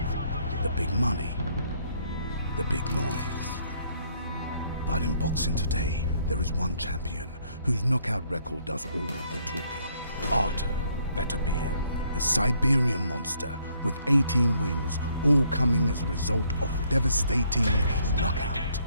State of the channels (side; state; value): both; inverted; correlation -0.68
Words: the big money, the big noise. But in boxing today, there is one champion whose knockout record does all the talking. Artur Beterbiev, a Siberian monster with 18 wins, all coming as a result of devastating knockout.